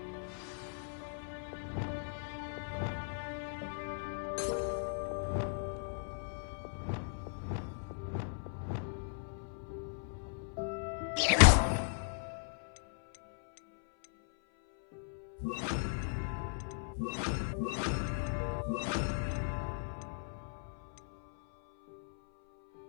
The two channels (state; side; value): silent; right; 53 dB below the other